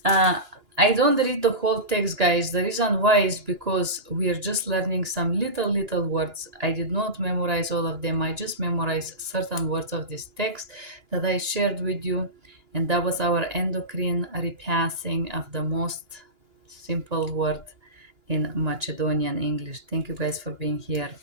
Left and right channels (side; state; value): left; late; 2.9 ms